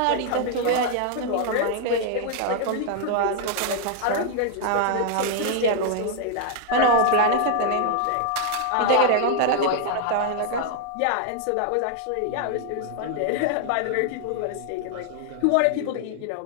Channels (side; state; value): both; different; correlation 0.00